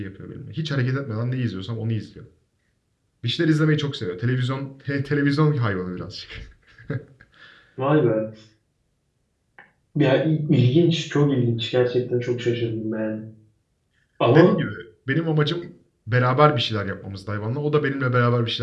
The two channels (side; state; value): both; identical; correlation 1.00